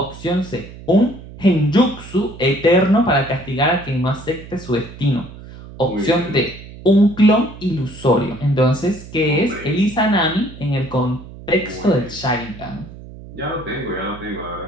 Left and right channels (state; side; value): noise; right; hum, 16 dB below the sound